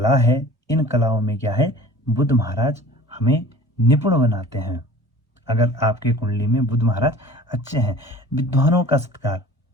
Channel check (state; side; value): normal; both; correlation 0.44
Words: है, इन कलाओं में क्या है, बुध महाराज हमें निपुण बनाते हैं। अगर आपके कुंडली में बुध महाराज अच्छे हैं, विद्वानों का सत्कार,